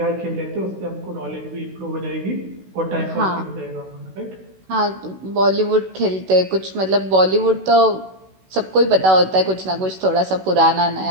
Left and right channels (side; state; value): left; late; 16 ms